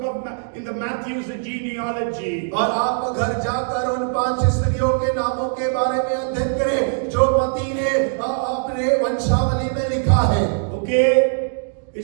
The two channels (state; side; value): silent; left; digital silence